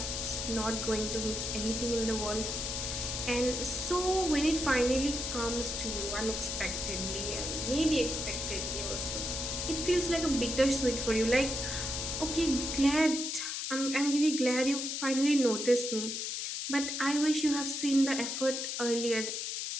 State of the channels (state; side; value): noise; left; hiss, 3 dB below the sound